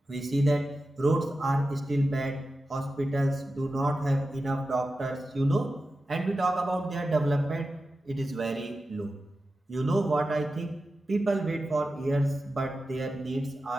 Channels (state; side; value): normal; both; correlation 0.92